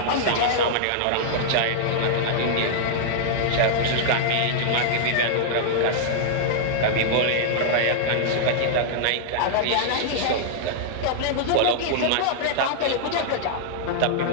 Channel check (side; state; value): both; different; correlation -0.01